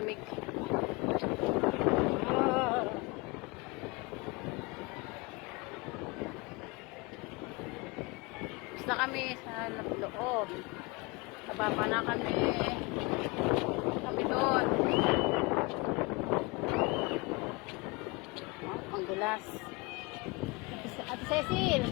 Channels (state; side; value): quieter; right; 26.3 dB